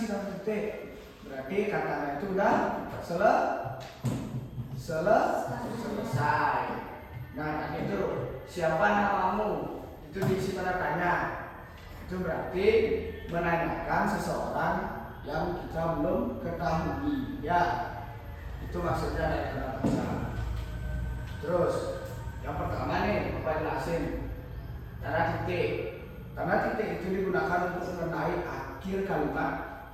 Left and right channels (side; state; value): both; identical; correlation 1.00